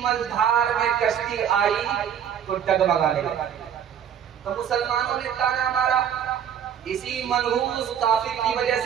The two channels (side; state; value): left; quieter; 8.9 dB